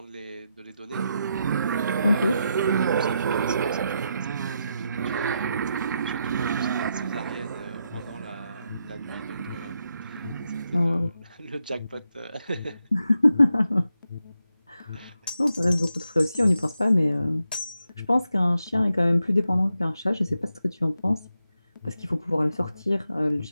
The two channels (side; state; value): both; inverted; correlation -0.84